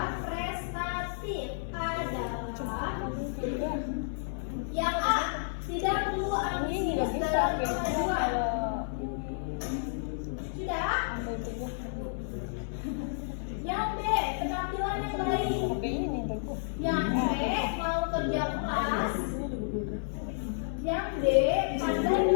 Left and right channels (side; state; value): right; silent; 57 dB below the other